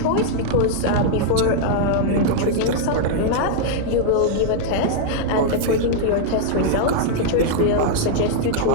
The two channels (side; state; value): both; different; correlation -0.01